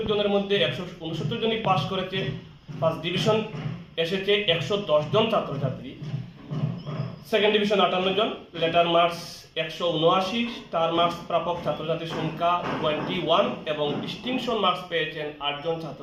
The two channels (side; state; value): both; identical; correlation 1.00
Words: জনের মধ্যে 169 জনই পাস করেছে। ফার্স্ট ডিভিশন এসেছে 110 জন ছাত্রছাত্রী, সেকেন্ড ডিভিশন 58 জন, লেটার মার্কস 179, স্টার মার্কস প্রাপক ছাত্রছাত্রীর সংখ্যা 21 এবং ডিস্টিংশন মার্কস পেয়েছেন 8 জন